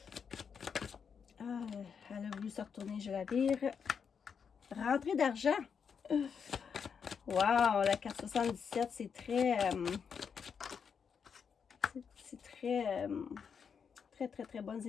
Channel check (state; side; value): quieter; right; 6.6 dB